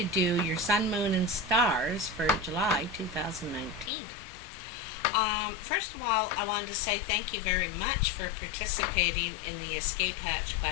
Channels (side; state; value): right; drops out; at 3.9 s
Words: do your Sun, Moon, and Stars for July 2019. First of all, I wanted to say thank you very much for participating in the escape hatch